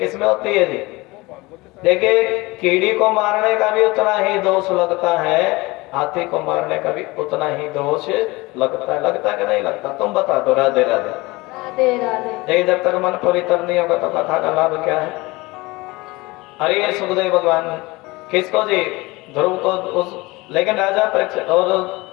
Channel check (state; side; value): quieter; right; 22.5 dB